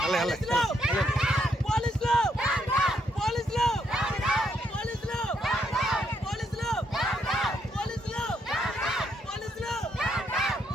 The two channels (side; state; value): both; normal; correlation 0.75